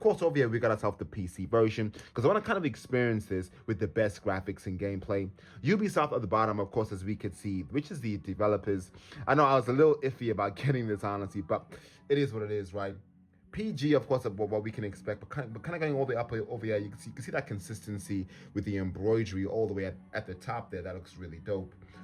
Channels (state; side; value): identical; both; correlation 1.00